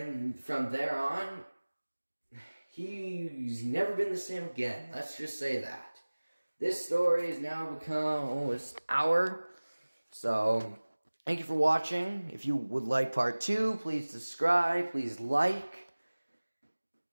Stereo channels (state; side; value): inverted; both; correlation -1.00